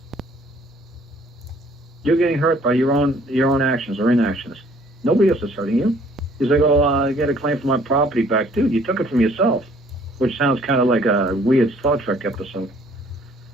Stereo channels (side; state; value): both; normal; correlation 0.59